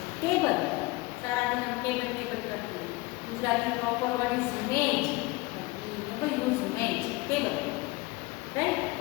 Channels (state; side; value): quieter; right; 22.5 dB